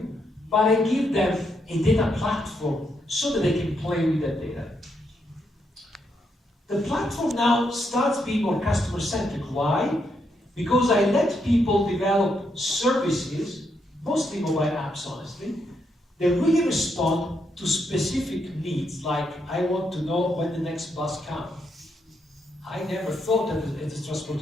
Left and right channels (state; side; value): normal; both; correlation 0.78